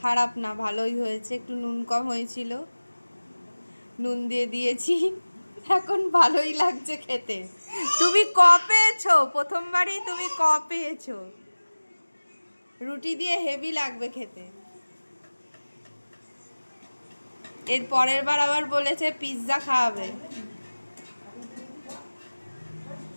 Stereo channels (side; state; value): both; inverted; correlation -1.00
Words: খারাপ না, ভালোই হয়েছে। একটু নুন কম হয়েছিল, নুন দিয়ে দিয়েছি, এখন ভালোই লাগছে খেতে। তুমি ক পেয়েছো? প্রথমবারই তুমি ক পেয়েছো? রুটি দিয়ে হেভি লাগবে খেতে। এর পরের বার আবার বলেছে পিৎজা খাওয়াবে।